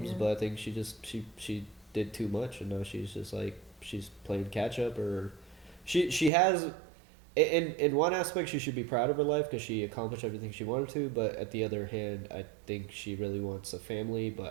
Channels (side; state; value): left; drops out; at 6.3 s